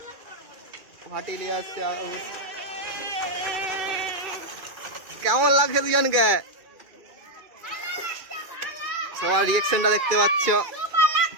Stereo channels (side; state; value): left; late; 2.3 ms